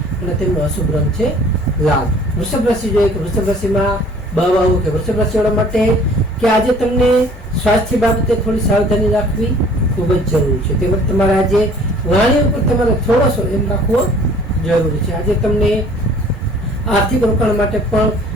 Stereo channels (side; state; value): both; normal; correlation 0.52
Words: અને તેમનો અશુભ રંગ છે લાલ. વૃષભ રાશિ જોઈએ કે વૃષભ રાશિમાં બાવાઓ કે વૃષભ રાશિવાળા માટે કે આજે તમને સ્વાસ્થ્ય બાબતે થોડી સાવધાની રાખવી ખૂબ જ જરૂરી છે. તેમજ તમારે આજે વાણી ઉપર તમારે થોડો એમ રાખવો જરૂરી છે. આજે તમને આર્થિક રોકાણ માટે પણ